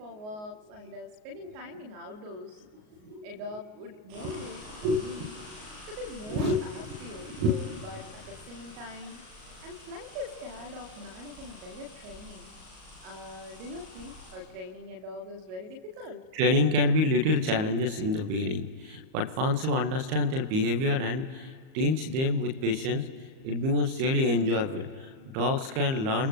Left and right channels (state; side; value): late; left; 38 ms